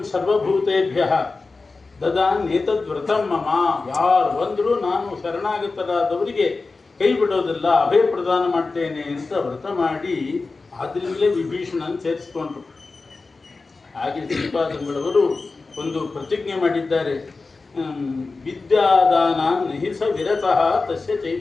ಸರ್ವಭೂತೇಭ್ಯ ದದಾನ್ಯೇತದ್ವ್ರತಂ ಮಮ, ಯಾರು ಬಂದರೂ ನಾನು ಶರಣಾಗತರಾದವರಿಗೆ ಕೈ ಬಿಡೋದಿಲ್ಲ, ಅಭಯ ಪ್ರದಾನ ಮಾಡ್ತೇನೆ ಅಂತ ವ್ರತ ಮಾಡಿ ಆದ್ರಿಂದಲೇ ವಿಭೀಷಣನ್ ಸೇರಿಸ್ಕೊಂಡ್ರು. ಹಾಗೆ ಶ್ರೀಪಾದಂಗಳವರು ಒಂದು ಪ್ರತಿಜ್ಞೆ ಮಾಡಿದ್ದಾರೆ. ವಿದ್ಯಾದಾನ ನಹಿಸ ವಿರತಃ ತಸ್ಯ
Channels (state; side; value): quieter; right; 3.9 dB